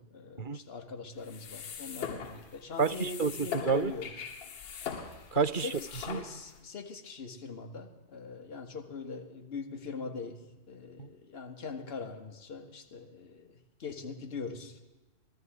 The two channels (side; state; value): right; late; 2.9 ms